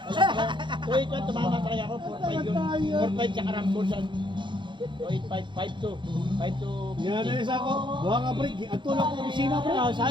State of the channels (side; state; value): left; late; 0.23 ms